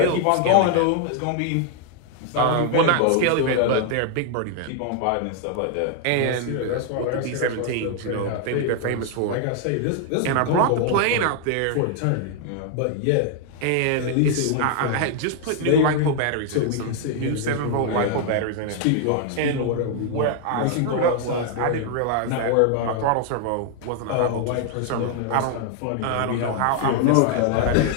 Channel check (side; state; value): both; different; correlation 0.00